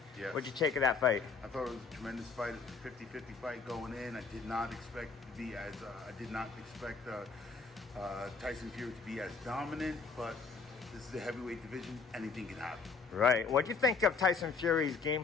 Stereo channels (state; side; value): quieter; right; 4.8 dB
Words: Yes. What'd you take of that fight? I thought it was a tremendous fight. It was a 50-50 fight going in. I did not expect it to be as Tyson Fury to be as dominant, but this is the heavyweight division. Anything can happen. Right. What'd you think of Tyson Fury's game